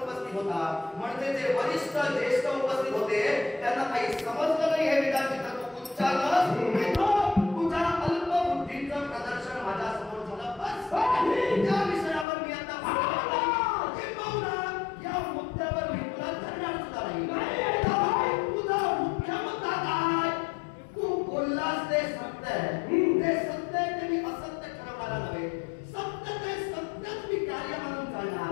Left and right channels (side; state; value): right; drops out; at 12.2 s